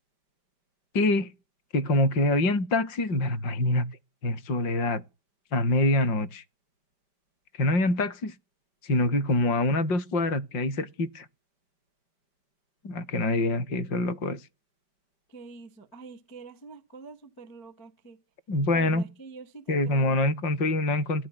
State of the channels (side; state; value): right; late; 5.1 ms